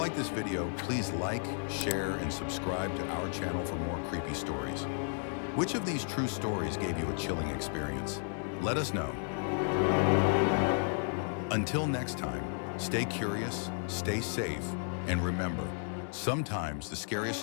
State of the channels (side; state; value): right; silent; 56 dB below the other